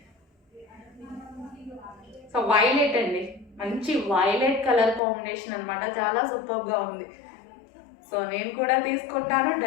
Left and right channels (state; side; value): drops out; right; at 5.0 s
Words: సో వైలెట్ అండి, మంచి వైలెట్ కలర్ కాంబినేషన్ అనమాట, చాలా సూపర్గా ఉంది. సో నేను కూడా తీసుకుంటాను,